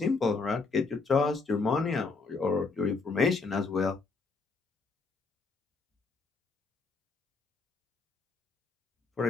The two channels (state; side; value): quieter; right; 4.2 dB